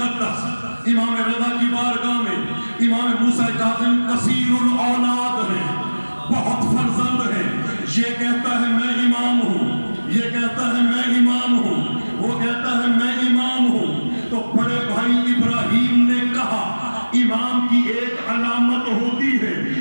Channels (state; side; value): inverted; both; correlation -1.00